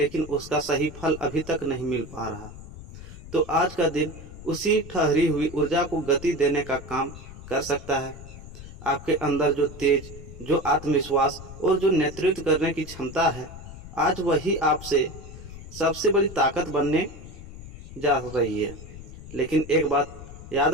उसका सही फल अभी तक नहीं मिल पा रहा, तो आज का दिन उसी ठहरी हुई ऊर्जा को गति देने का काम कर सकता है। आपके अंदर जो तेज, जो आत्मविश्वास और जो नेतृत्व करने की क्षमता है, आज वही आपसे सबसे बड़ी ताकत बनने जा रही है। लेकिन एक बात याद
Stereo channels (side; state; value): left; noise; rumble, 14 dB below the sound